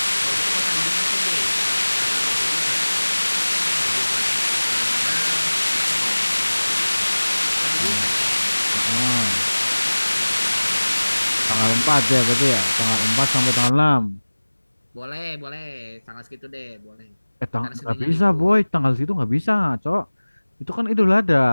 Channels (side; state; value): both; inverted; correlation -1.00